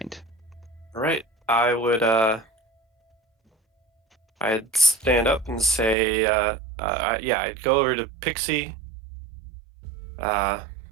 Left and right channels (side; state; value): left; drops out; at 6.0 s